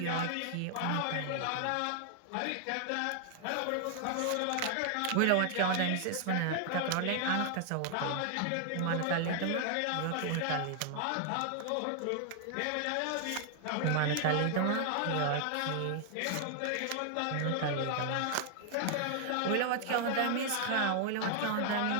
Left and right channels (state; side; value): different; both; correlation 0.00